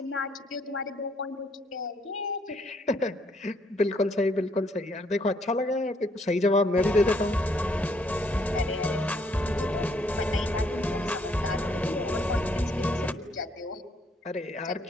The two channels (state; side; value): normal; both; correlation 0.68